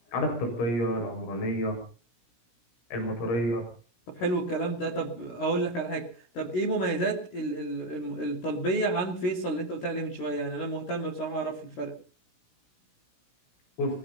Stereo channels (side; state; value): right; late; 17 ms